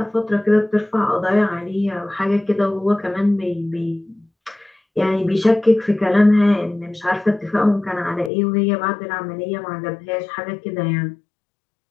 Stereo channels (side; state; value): right; drops out; at 8.3 s